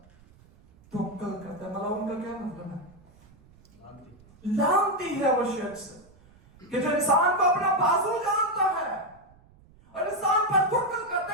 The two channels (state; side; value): noise; right; rumble, 27 dB below the sound